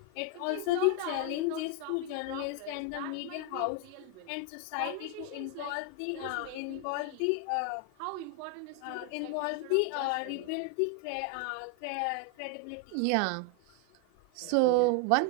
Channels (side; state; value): both; different; correlation 0.01